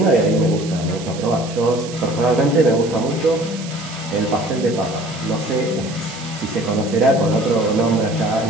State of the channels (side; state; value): right; noise; hiss, 14 dB below the sound